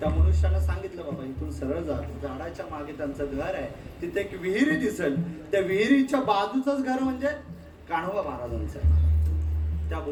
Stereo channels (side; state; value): both; identical; correlation 1.00